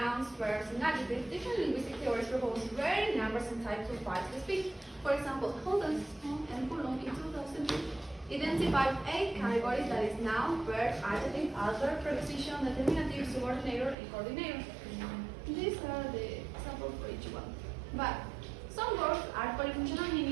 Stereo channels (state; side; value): drops out; left; at 14.0 s